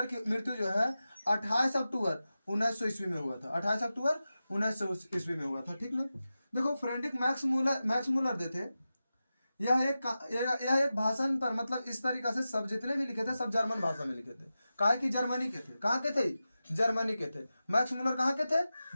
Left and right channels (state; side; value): inverted; both; correlation -0.93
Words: की मृत्यु जो है 28 अक्टूबर 1900 ईस्वी में हुआ था, 28 अक्टूबर 1900 ईस्वी में हुआ था, ठीक ना। देखो फ्रेडरिक मैक्स मूलर जो थे, यह एक भाषण पर, मतलब इस तरीका से सब जितने भी लिखे थे सब जर्मन भाषा में लिखे थे, काहे कि जर्मनी के थे, कहाँ के थे, जर्मनी के थे। मैक्स मूलर कहाँ के थे,